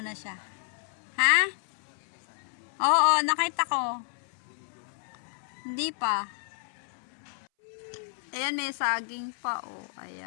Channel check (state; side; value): silent; right; 57 dB below the other